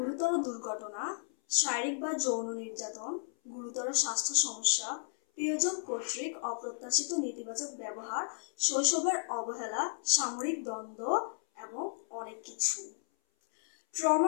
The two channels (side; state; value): right; silent; 55 dB below the other